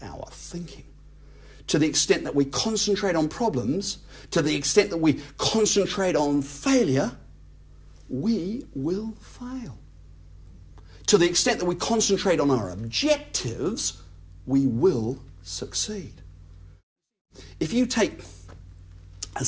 our thinking. To the extent that we concentrate on problems, to the extent that we concentrate on failure, we will fail. To the extent that we concentrate on our objectives, we will succeed. If you take a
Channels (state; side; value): identical; both; correlation 1.00